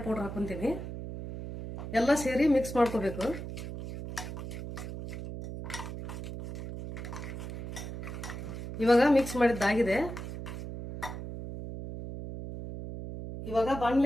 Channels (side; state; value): right; noise; hum, 8 dB below the sound